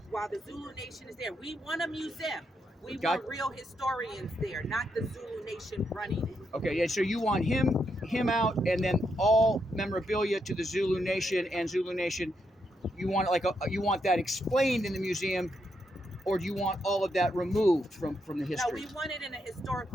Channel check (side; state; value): both; normal; correlation 0.80